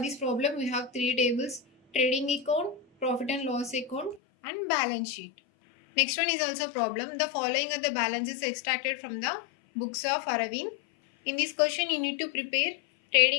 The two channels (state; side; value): drops out; right; at 4.2 s